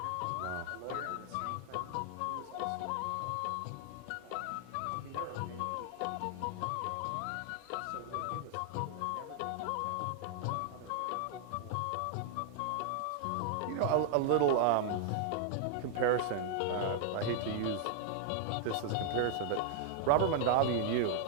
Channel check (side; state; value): both; different; correlation 0.00